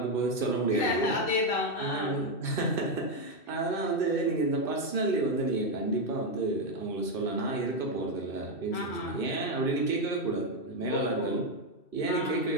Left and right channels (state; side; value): late; right; 2.7 ms